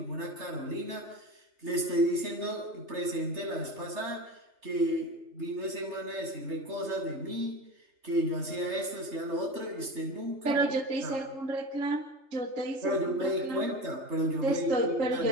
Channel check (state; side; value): late; left; 3.3 ms